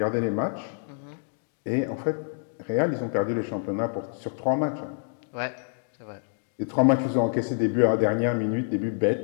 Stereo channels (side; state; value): right; silent; digital silence